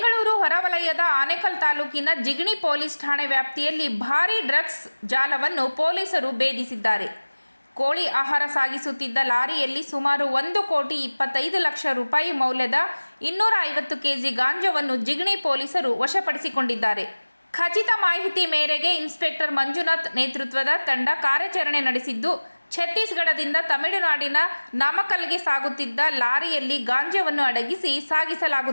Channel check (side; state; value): both; inverted; correlation -1.00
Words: ಹೊರವಲಯದ ಆನೇಕಲ್ ತಾಲೂಕಿನ ಜಿಗಣಿ ಪೊಲೀಸ್ ಠಾಣೆ ವ್ಯಾಪ್ತಿಯಲ್ಲಿ ಭಾರೀ ಡ್ರಗ್ಸ್ ಜಾಲವನ್ನು ಪೊಲೀಸರು ಭೇದಿಸಿದ್ದಾರೆ. ಕೋಳಿ ಆಹಾರ ಸಾಗಿಸುತ್ತಿದ್ದ ಲಾರಿಯಲ್ಲಿ ಸುಮಾರು 1,25,00,000 ರೂಪಾಯಿ ಮೌಲ್ಯದ 250 ಕೆಜಿ ಗಾಂಜಾವನ್ನು ಜಿಗಣಿ ಪೊಲೀಸರು ವಶಪಡಿಸಿಕೊಂಡಿದ್ದಾರೆ. ಖಚಿತ ಮಾಹಿತಿ ಮೇರೆಗೆ ಇನ್ಸ್ಪೆಕ್ಟರ್ ಮಂಜುನಾಥ್ ನೇತೃತ್ವದ ತಂಡ ಕಾರ್ಯಾಚರಣೆ ನಡೆಸಿದ್ದು, ಛತ್ತೀಸ್ಗಢದಿಂದ ತಮಿಳುನಾಡಿನ ನಾಮಕ್ಕಲ್ಗೆ ಸಾಗುತ್ತಿದ್ದ ಲಾರಿಯಲ್ಲಿ ಗಾಂಜಾವನ್ನು ಅಡಗಿಸಿ